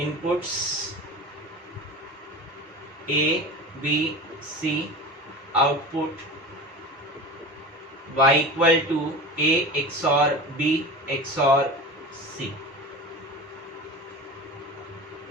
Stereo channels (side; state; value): both; normal; correlation 0.32